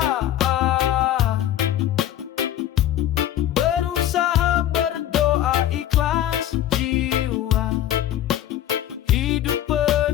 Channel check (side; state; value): right; quieter; 12.1 dB